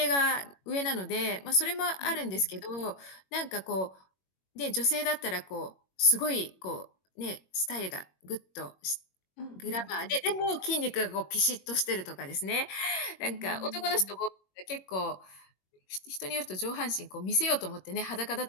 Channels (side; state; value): right; late; 21 ms